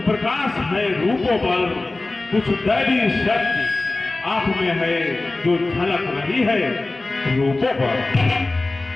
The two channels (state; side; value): quieter; right; 3.1 dB